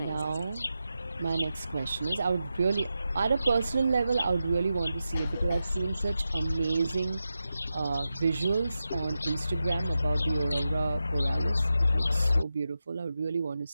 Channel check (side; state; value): both; inverted; correlation -0.90